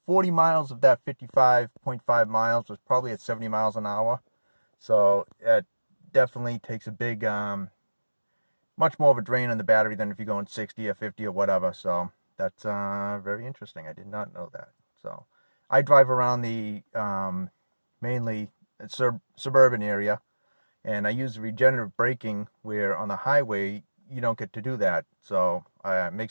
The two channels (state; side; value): inverted; both; correlation -1.00